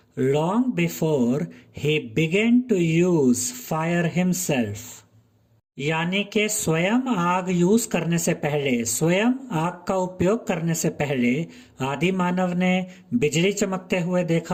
long before he began to use fire himself. यानी कि स्वयं आग यूज करने से पहले, स्वयं आग का उपयोग करने से पहले आदि मानव ने बिजली चमकते हुए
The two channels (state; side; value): identical; both; correlation 1.00